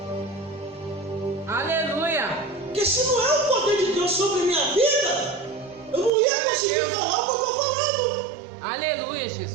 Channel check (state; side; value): drops out; left; at 6.1 s